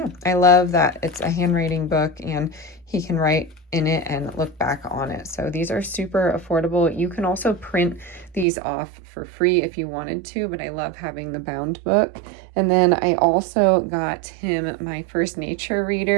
I love that it's a handwriting book and he can write in it and look back on it. So these are super affordable. You can also print these off for free if you wanted to, but I love having the bound book. And then I also got him my first nature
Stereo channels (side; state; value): left; drops out; at 8.5 s